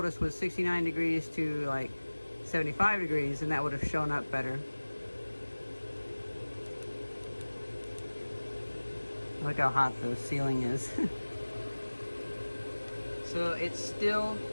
was 69 degrees to like 75 degrees, and that would have shown up better. Look how hot the ceiling is. So it's still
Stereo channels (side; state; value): both; inverted; correlation -1.00